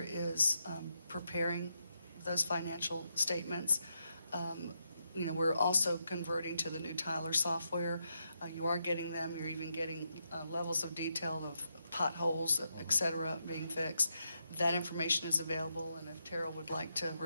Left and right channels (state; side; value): inverted; both; correlation -0.82